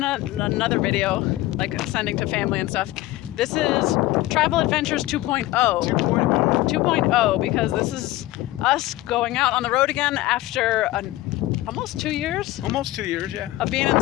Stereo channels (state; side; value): quieter; right; 17.1 dB